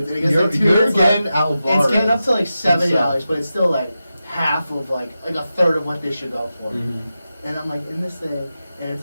and it gets You're, like 2 you're minutes left. getting Alvarez. It's getting up to like $70, himself. but it's still like half of like a third of what they should go for. Mm-hmm. And I'm like in this thing, and it's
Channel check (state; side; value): inverted; both; correlation -0.92